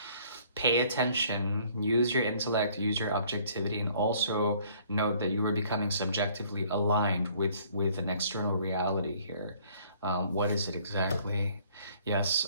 Pay attention, use your intellect, use your objectivity, and also note that you are becoming subjectively aligned with an external reality here. What is it exactly?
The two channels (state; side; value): inverted; both; correlation -0.59